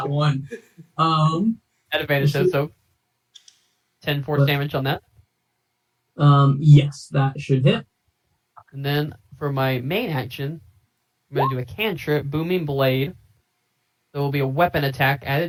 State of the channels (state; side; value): identical; both; correlation 1.00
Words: one. at advantage, so 10 force damage on that. Yes, that should hit. And then for my main action, I'm going to do a cantrip, Booming Blade. So it will be a weapon attack at